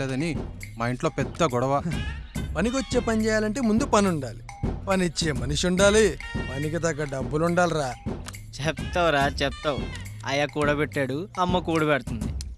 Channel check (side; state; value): both; identical; correlation 1.00